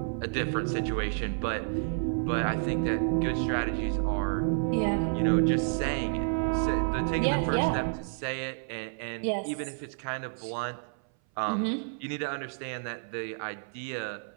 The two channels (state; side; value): silent; left; 58 dB below the other